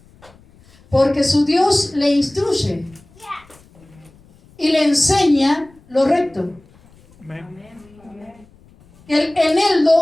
porque su Dios le instruye y le enseña lo recto. El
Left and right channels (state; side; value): noise; left; rumble, 28 dB below the sound